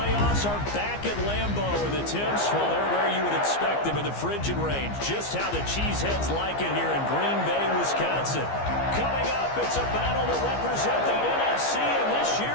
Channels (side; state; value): right; late; 15 ms